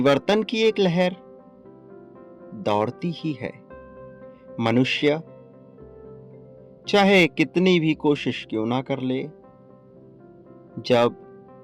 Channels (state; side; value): identical; both; correlation 1.00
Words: की एक लहर दौड़ती ही है। मनुष्य चाहे कितनी भी कोशिश क्यों ना कर ले,